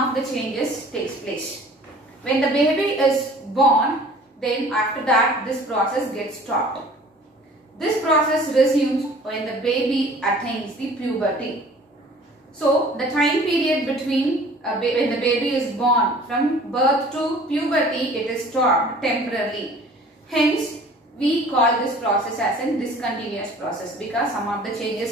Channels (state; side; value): normal; both; correlation 0.49